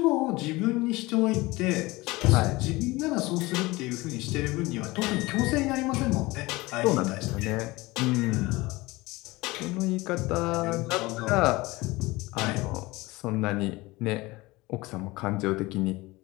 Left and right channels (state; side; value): quieter; right; 21.4 dB